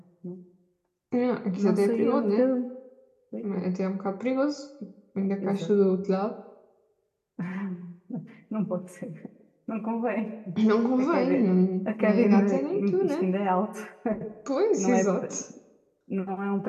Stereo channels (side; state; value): both; identical; correlation 1.00